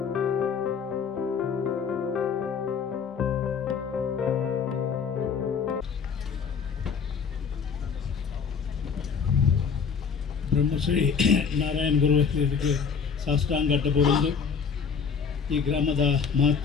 ಬ್ರಹ್ಮಶ್ರೀ ನಾರಾಯಣ ಗುರುವರಿಗೆ ಸಾಷ್ಟಾಂಗ ಅಡ್ಡಬೂರೊಂದು ಈ ಗ್ರಾಮದ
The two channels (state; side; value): quieter; right; 6.2 dB